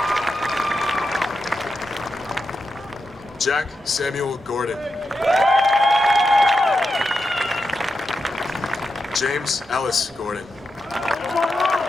Jack Samuel Gordon. James Ellis Gordon.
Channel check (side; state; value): both; normal; correlation 0.88